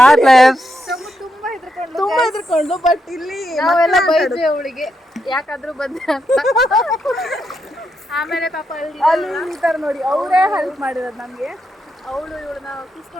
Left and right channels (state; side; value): normal; both; correlation 0.82